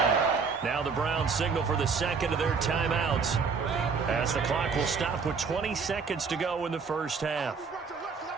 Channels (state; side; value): quieter; left; 5.3 dB